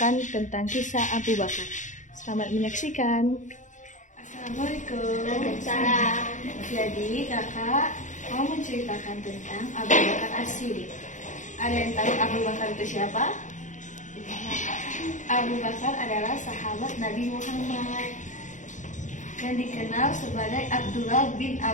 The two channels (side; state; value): right; late; 0.36 ms